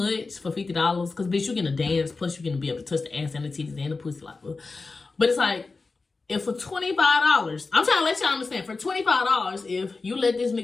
for $50 because, bitch, you're going to dance, plus you're going to be able to touch the ass and the titties and the pussy. Like, but it's like, if for $25, I'm trying to let y'all understand, for $25, if you let this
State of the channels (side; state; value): right; quieter; 3.9 dB